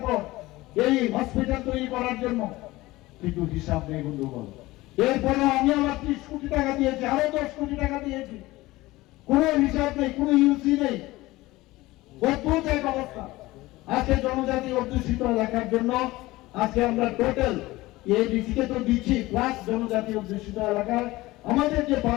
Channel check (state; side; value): quieter; right; 19.1 dB